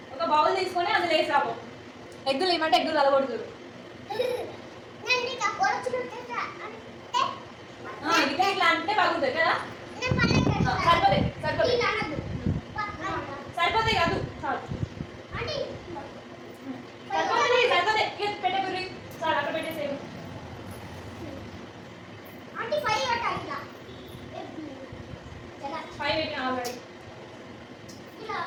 ఒక బౌల్ తీసుకొని అందులో వేసాము. ఎగ్గులు ఏమంటే ఎగ్గులు అలగొడుతురు. ఇట్లా ఇట్లా అంటే బాగుంటుంది కదా. సరిపోతాయి సరిపోతాయి సరిపోతాయి కాదు చాలు. సరిపోతుంది సరిపోతాయి. పెట్టే గురి చాలు, అక్కడ పెట్టేసేవు. ఫైవ్ పెట్టిన ఆల్రెడీ.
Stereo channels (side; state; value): both; identical; correlation 1.00